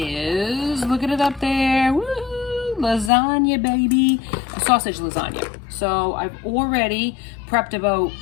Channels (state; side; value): drops out; right; at 3.1 s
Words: look at it up there, woo, lasagna baby, a sausage lasagna. So I've already prepped about,